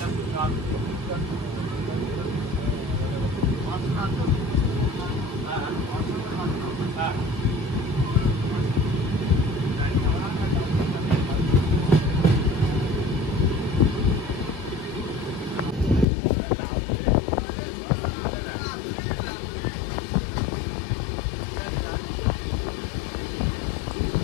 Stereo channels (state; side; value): drops out; right; at 16.1 s